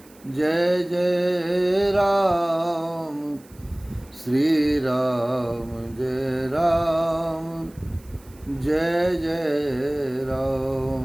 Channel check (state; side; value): noise; right; hiss, 27 dB below the sound